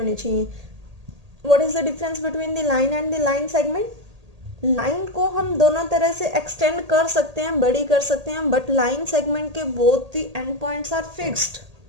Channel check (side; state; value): left; late; 1.8 ms